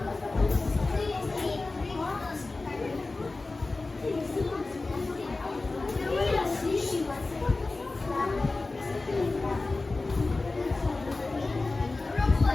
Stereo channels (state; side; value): quieter; right; 3.4 dB